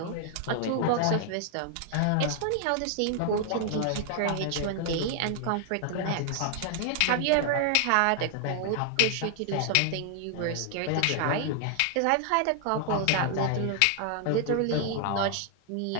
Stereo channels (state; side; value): different; both; correlation 0.00